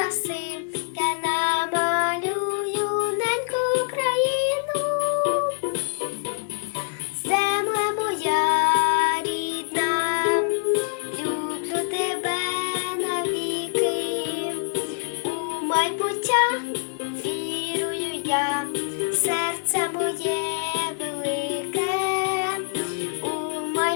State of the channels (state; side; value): silent; right; 62 dB below the other